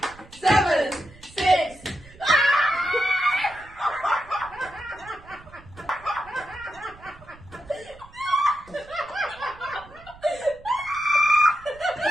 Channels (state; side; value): noise; right; rumble, 22 dB below the sound